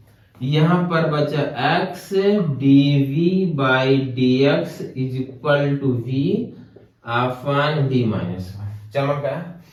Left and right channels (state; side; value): identical; both; correlation 1.00